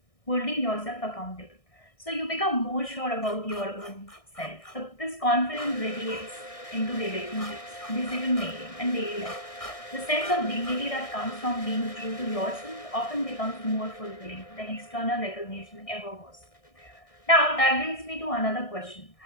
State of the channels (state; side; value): late; right; 1.6 ms